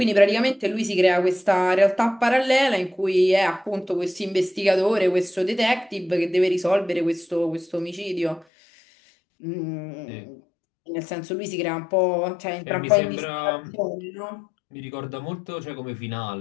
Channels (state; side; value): drops out; right; at 8.5 s